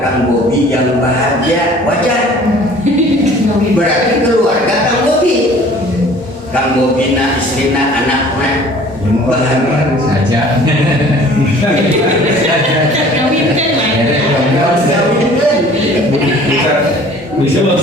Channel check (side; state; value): both; normal; correlation 0.50